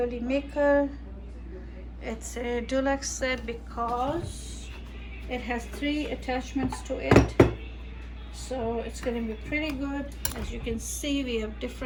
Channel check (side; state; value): both; identical; correlation 1.00